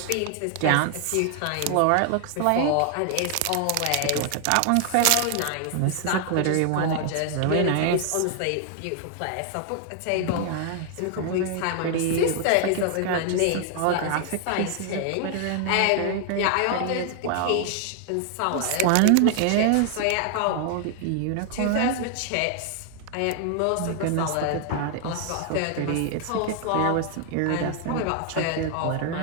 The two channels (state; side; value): different; both; correlation 0.00